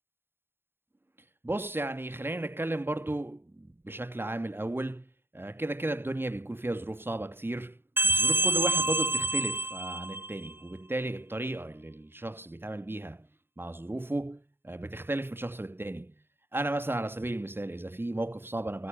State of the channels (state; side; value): late; left; 0.11 ms